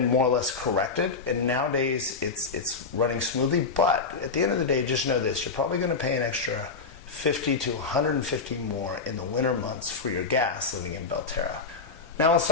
more or less corrected, and nowadays it's running smoothly, but at the end of the day, just know this, you're probably going to pay an extra $50 to $150 more in the winter months for your gas living in Belterra. Now let's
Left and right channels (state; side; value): quieter; right; 4.6 dB